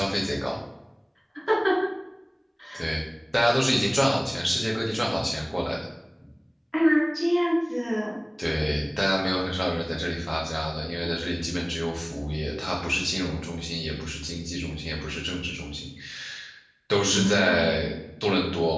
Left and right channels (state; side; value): identical; both; correlation 1.00